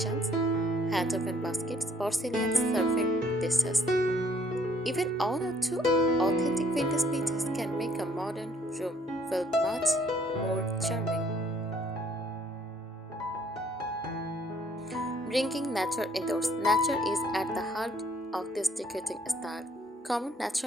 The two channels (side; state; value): both; normal; correlation 0.63